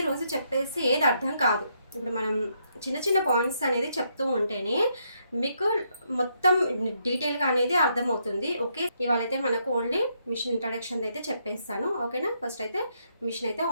రోజు చెప్పేసి ఏది అర్థం కాదు. ఇప్పుడు మనం చిన్న చిన్న పాయింట్స్ అనేది చెప్తూ ఉంటేనే మీకు మొత్తం డీటెయిల్గా అనేది అర్థమవుతుంది. ఓకే, ఇవాళ అయితే మనకు ఓన్లీ మిషన్ ఇంట్రడక్షన్ అయితే చెప్పేస్తాను. ఓకేనా, ఫస్ట్ అయితే మిషన్ అయితే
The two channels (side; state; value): both; inverted; correlation -0.76